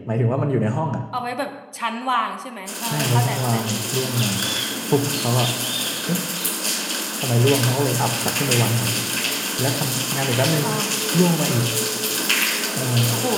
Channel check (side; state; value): both; identical; correlation 1.00